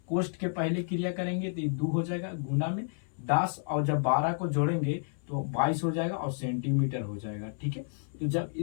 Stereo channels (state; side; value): silent; right; 57 dB below the other